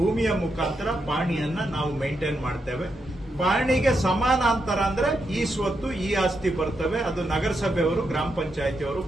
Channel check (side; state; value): both; normal; correlation 0.83